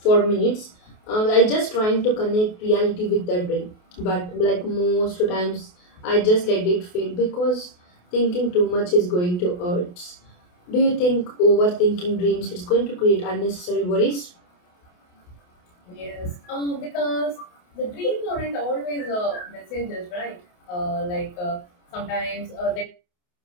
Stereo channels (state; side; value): late; right; 28 ms